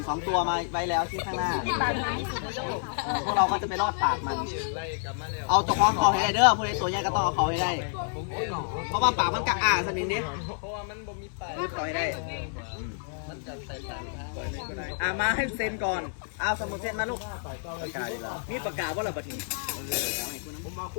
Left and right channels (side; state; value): right; silent; 59 dB below the other